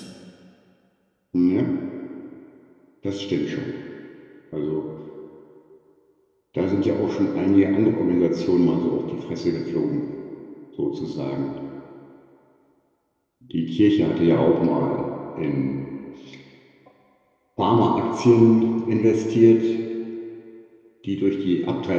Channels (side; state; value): both; identical; correlation 1.00